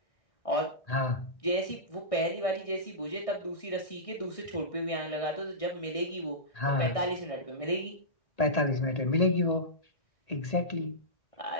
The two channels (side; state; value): right; late; 1.6 ms